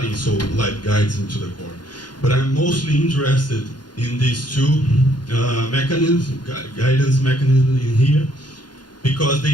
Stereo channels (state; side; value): late; right; 0.71 ms